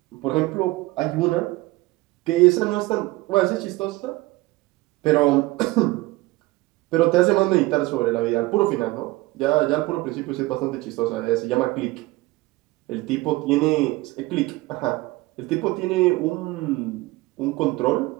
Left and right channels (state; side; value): quieter; left; 20.5 dB